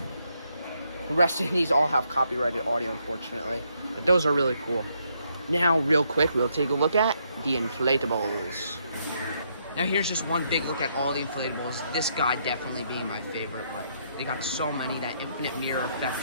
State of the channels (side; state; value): both; inverted; correlation -0.74